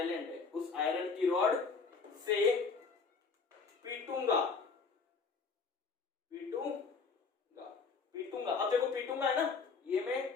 है। उस आयरन की रॉड से पीटूंगा, पीटूंगा। अब देखो पीटूंगा है ना, ये मैं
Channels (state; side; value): quieter; right; 4.9 dB